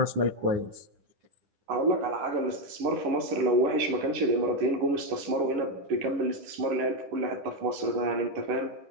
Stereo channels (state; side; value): late; left; 10 ms